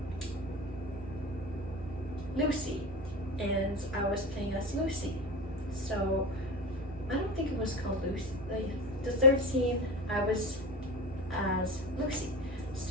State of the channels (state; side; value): noise; right; hum, 15 dB below the sound